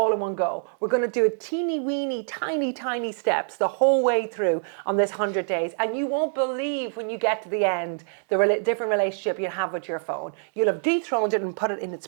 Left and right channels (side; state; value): left; silent; digital silence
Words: in one go. We're going to do it teeny weeny, tiny steps the whole way through on this 100 days. And you won't believe when you get to the end, the different relationship you have with your phone. You'll have dethroned it and put it in its